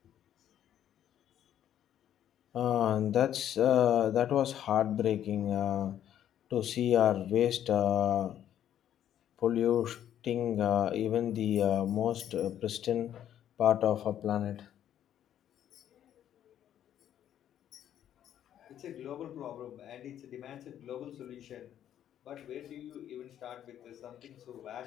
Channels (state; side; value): quieter; right; 10.6 dB